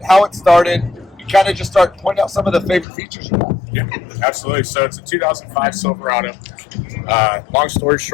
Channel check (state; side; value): drops out; right; at 2.9 s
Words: how it started. You kind of just start pointing out some of the favorite features you have. Yeah, absolutely. So it's a 2005 Silverado. Long story